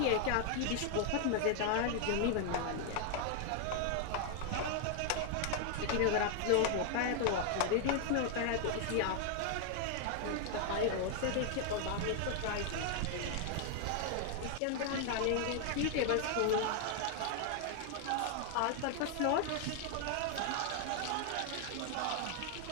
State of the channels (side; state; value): both; different; correlation 0.00